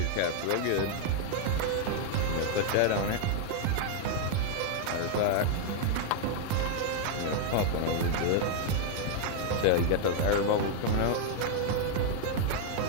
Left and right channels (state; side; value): different; both; correlation 0.00